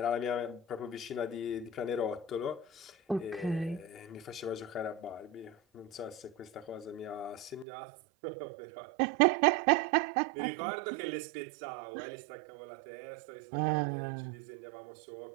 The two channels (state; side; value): drops out; left; at 7.7 s